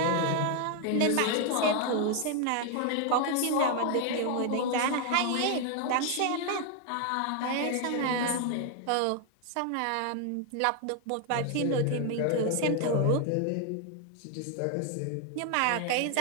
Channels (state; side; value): different; both; correlation 0.00